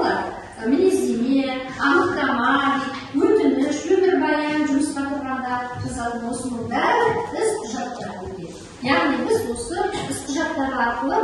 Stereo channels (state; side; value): identical; both; correlation 1.00